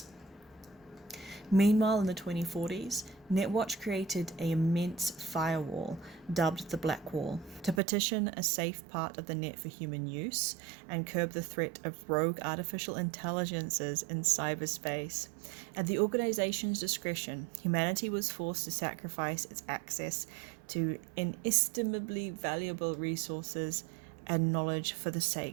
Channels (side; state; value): left; drops out; at 7.8 s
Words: Meanwhile, in the 2040s, Netwatch created an immense firewall dubbed the Black Wall to partition a safe part of the net for human use and curb the threat of rogue artificial intelligences in cyberspace. At the organization's discretion, humanity was forced to sacrifice its access to inestimably valuable resources and knowledge for the